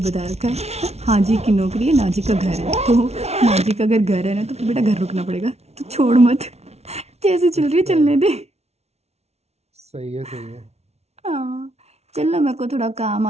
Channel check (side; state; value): left; late; 0.31 ms